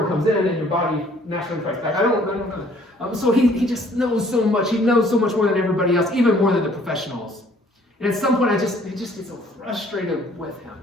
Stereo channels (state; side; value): normal; both; correlation 0.59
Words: comes in and your body naturally fights back. I don't know. So he just knows so much. He knows so much more than everybody else, even more than the professionals. And at some point, I just get so frustrated with him.